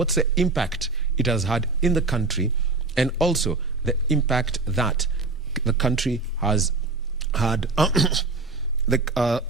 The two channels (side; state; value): left; quieter; 3.7 dB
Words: the impact it has had in the country, and also the impact that the country has had,